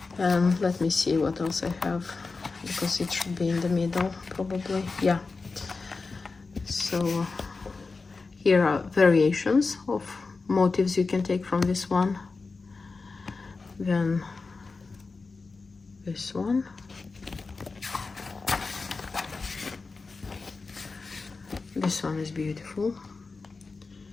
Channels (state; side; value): quieter; right; 4.1 dB